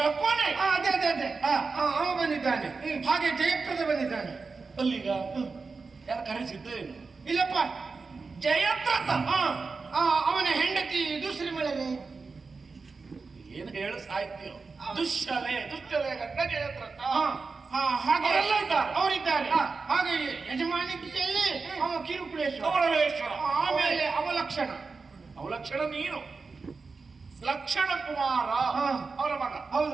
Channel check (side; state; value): left; quieter; 4.4 dB